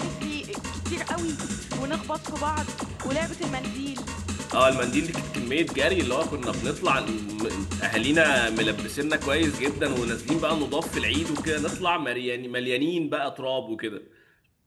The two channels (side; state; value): both; identical; correlation 1.00